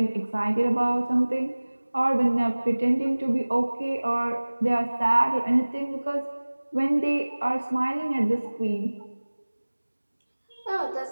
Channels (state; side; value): inverted; both; correlation -1.00